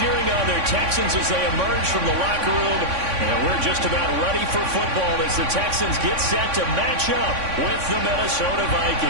on their Texans as they emerge from the locker room. And we're just about ready for football as the Texans get set to match up with the Minnesota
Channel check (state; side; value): late; left; 3.6 ms